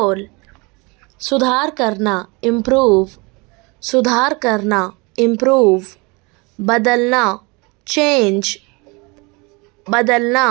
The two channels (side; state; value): left; quieter; 27.5 dB